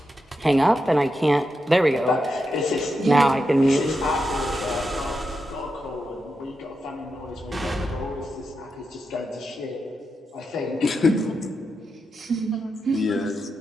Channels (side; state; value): both; normal; correlation 0.87